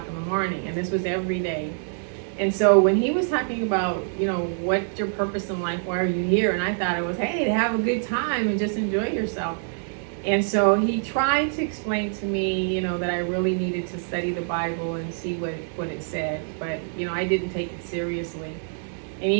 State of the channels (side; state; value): left; silent; digital silence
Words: in the morning. And this was every day. And so when he was talking about, what's your purpose in life? Why are you here? And I thought it was, hey, to have a good time and just enjoy yourself. And so he tried to explain to me, that I really needed to study the Bible and see what it said. But, I didn't take it seriously. And